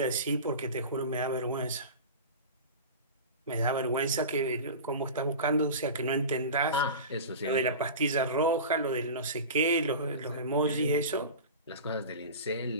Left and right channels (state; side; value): inverted; both; correlation -0.31